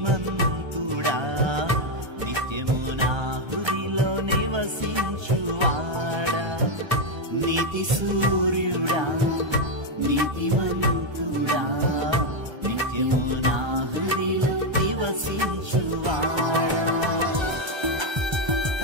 నిత్యము నా హృదిలో నివసించువాడా నీతి సూర్యుడా నీతిమంతుడా నిత్యము నా హృదిలో నివసించువాడా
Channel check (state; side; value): late; left; 1.3 ms